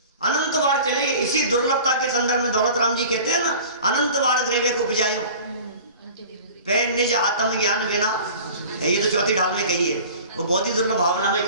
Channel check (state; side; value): inverted; both; correlation -0.42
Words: अनंत बार चलेगी। इसी दुर्लभता के संदर्भ में दौलत राम जी कहते हैं ना, अनंत बार ग्रेवे को उपजायो पे निज आत्म ज्ञान बिना। ये तो चौथी ढाल में कही है, वो बहुत ही दुर्लभ भावना में